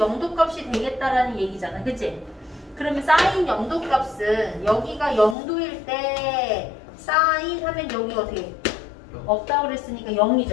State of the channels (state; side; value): drops out; right; at 5.4 s